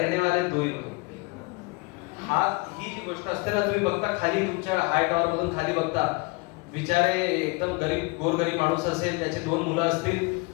वाले 2 ही लोग. ही जी गोष्ट असते ना, तुम्ही बघता खाली तुमच्या हाय टॉवर मधून खाली बघता, बिचारे एकदम गरीब गोरगरीब माणूस असेल, त्याचे 2 मुलं असतील,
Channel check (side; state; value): right; quieter; 27.6 dB